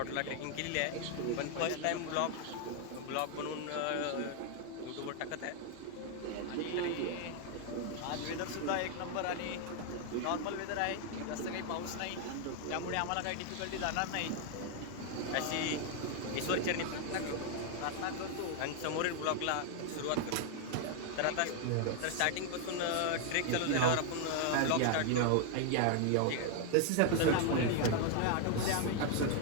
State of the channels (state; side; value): different; both; correlation 0.00